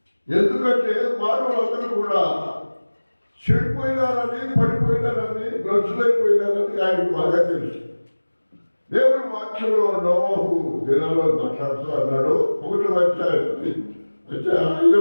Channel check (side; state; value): both; inverted; correlation -1.00